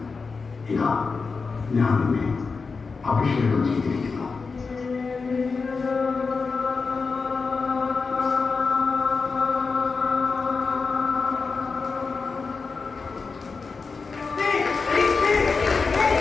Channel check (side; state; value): right; quieter; 4.7 dB